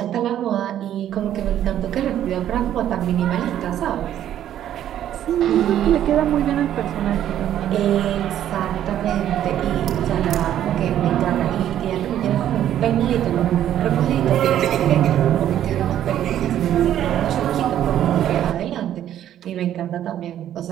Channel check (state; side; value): quieter; left; 11.2 dB